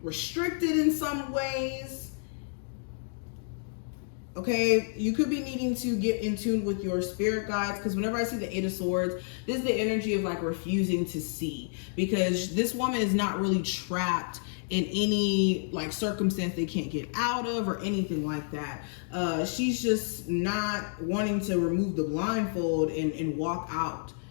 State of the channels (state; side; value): silent; right; digital silence